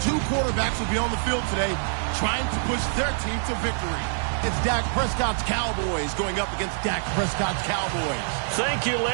two quarterbacks will be on the field today trying to push their team to victory. It's Dak Prescott's Cowboys going up against Dak Prescott's Cowboys. Thank you,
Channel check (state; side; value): silent; left; 61 dB below the other